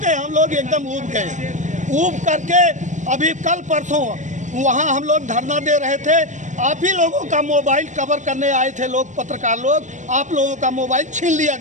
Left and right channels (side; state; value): left; late; 0.35 ms